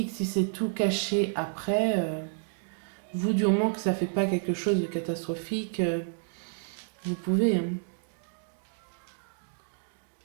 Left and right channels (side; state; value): left; silent; digital silence